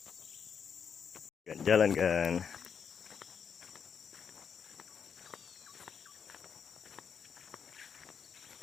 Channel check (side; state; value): right; quieter; 6.9 dB